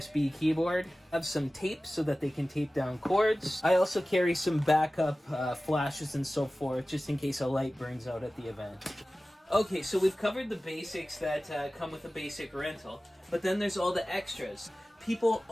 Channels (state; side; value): normal; both; correlation 0.96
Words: keyboard. I have some tape so that they can tape down cords. I also carry some backup flashes and so forth, just in case a light burns out at the event. Okay, so we've covered the basics that come with a basic rental, but then there's all the extras. People